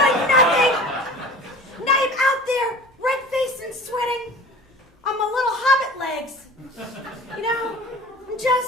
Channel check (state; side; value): normal; both; correlation 0.41